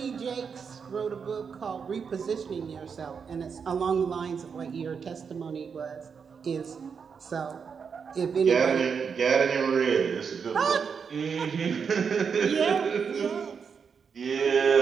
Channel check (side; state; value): left; quieter; 6.2 dB